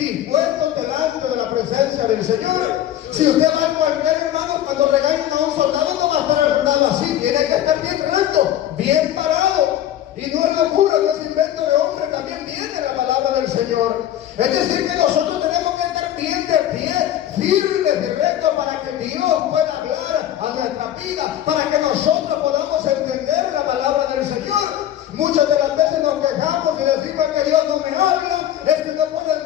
delante de la presencia del Señor. Si usted va al cuartel, hermano, cuando regañan a un soldado, no va a estar sentado así, tiene que estar bien recto, bien parado. Y no es locura, no es invento de hombre, también viene la palabra del Señor. Es decir, que nosotros tenemos que estar bien de pie, firmes y rectos, para que Dios pueda hablar a nuestra vida, para que nosotros podamos entender la palabra del Señor. Muchas de las veces nos quejamos y decimos que Dios no me habla, es que no puedo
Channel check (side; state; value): right; quieter; 11.7 dB